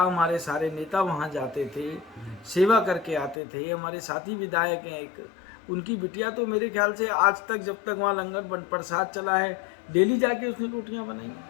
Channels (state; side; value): drops out; right; at 3.4 s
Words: हमारे सारे नेता वहाँ जाते थे, सेवा करके आते थे। हमारे साथी विधायक हैं एक, उनकी बिटिया तो मेरे ख्याल से आज तक, जब तक वहाँ लंगर प्रसाद चला है, डेली जाके उसने रोटियाँ